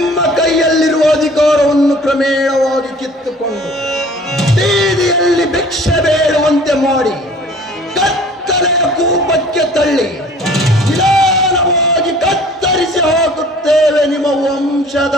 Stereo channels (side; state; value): both; normal; correlation 0.49